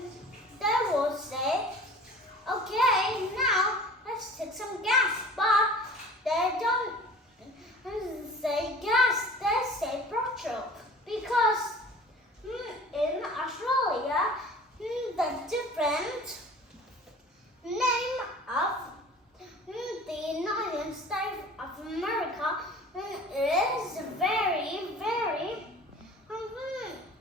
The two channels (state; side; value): normal; both; correlation 0.43